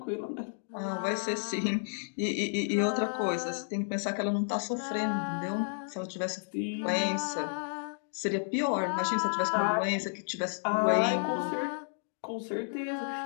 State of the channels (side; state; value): right; silent; digital silence